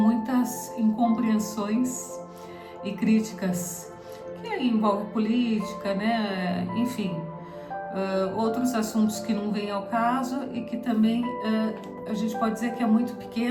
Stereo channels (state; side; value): identical; both; correlation 1.00